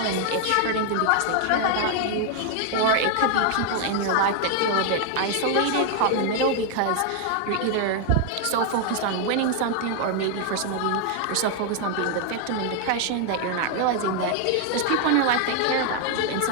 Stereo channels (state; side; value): different; both; correlation 0.00